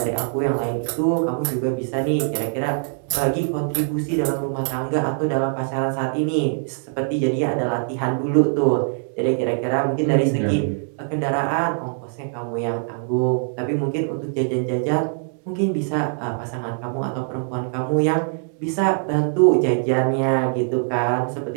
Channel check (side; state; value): left; silent; 64 dB below the other